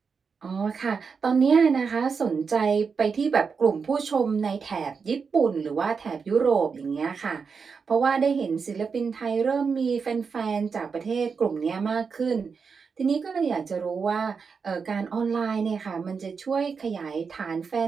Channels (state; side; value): quieter; left; 5.5 dB